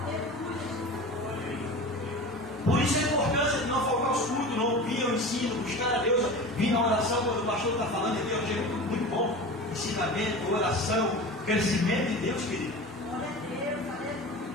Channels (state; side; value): normal; both; correlation 0.33